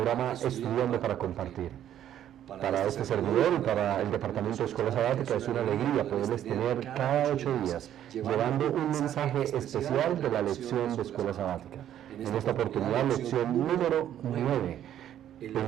Estudiando para Compartir. Para este servidor y para el Departamento de Escuela Sabática es una alegría poderles tener cada 8 días llevando un mensaje especial de la lección de Escuela Sabática. En esta oportunidad, lección número 9, en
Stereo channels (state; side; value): quieter; left; 11.0 dB